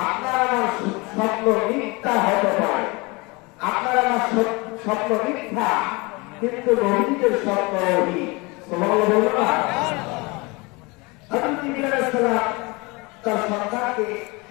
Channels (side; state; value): right; quieter; 26.1 dB